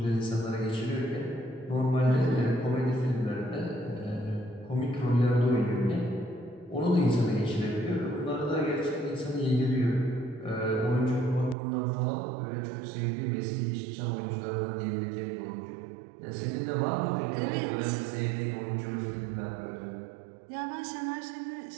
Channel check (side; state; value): left; drops out; at 11.6 s